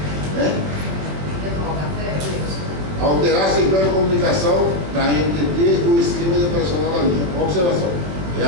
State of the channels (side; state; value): left; late; 21 ms